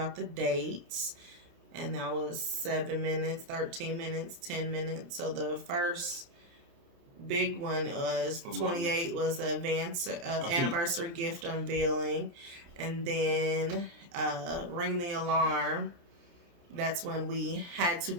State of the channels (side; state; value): left; late; 29 ms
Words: the dates, and that was 7 minutes, 13 minutes, 10 minutes. So the first big one was 28 was the anniversary gift unveiling, and then ring the alarm. That's when we had to